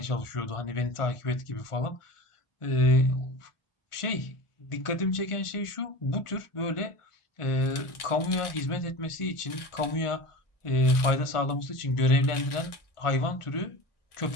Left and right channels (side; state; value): right; late; 1.4 ms